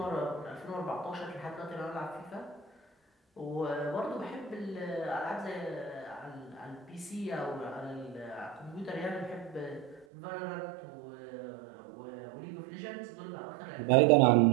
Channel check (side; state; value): left; drops out; at 10.1 s